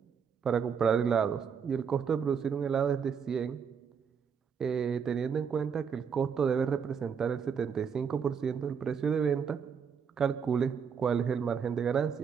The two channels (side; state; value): left; quieter; 6.8 dB